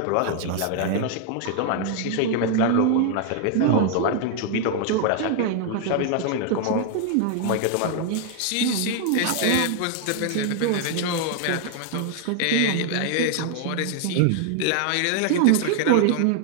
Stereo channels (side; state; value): both; different; correlation 0.00